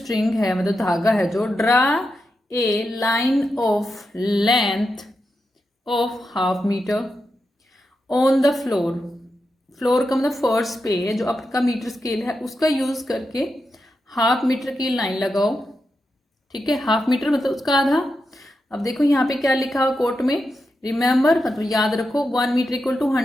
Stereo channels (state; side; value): normal; both; correlation 0.87